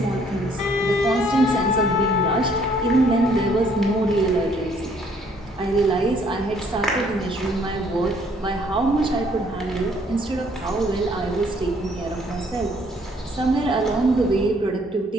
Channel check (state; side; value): normal; both; correlation 0.63